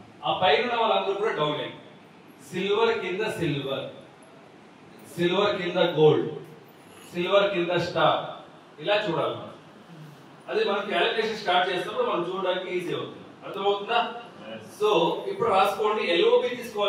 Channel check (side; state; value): both; identical; correlation 1.00